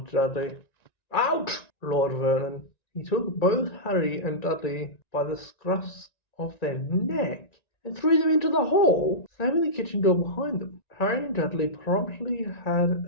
Dudley. "Out!" roared Vernon. He took both Harry and Dudley by the scruffs of their neck and threw them into the hall, slamming the kitchen door behind them. Harry and Dudley promptly had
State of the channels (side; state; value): right; late; 1.9 ms